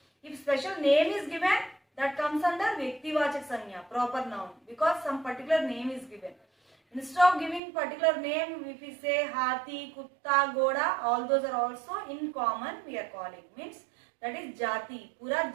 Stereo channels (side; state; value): left; drops out; at 7.6 s